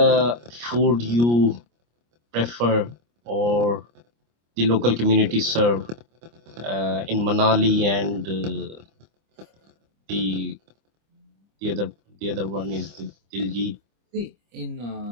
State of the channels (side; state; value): left; late; 25 ms